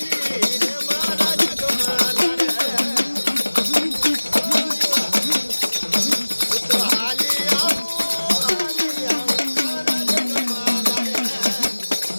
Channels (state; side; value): inverted; both; correlation -1.00